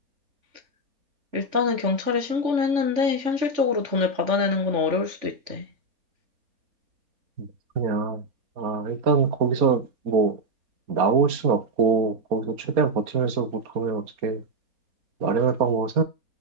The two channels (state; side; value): late; left; 3.5 ms